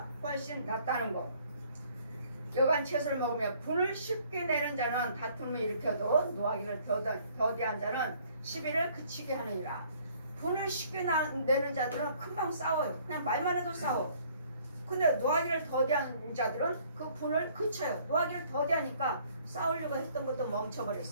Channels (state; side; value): inverted; both; correlation -0.60